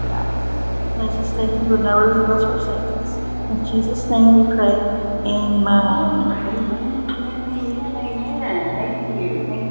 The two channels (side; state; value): both; inverted; correlation -1.00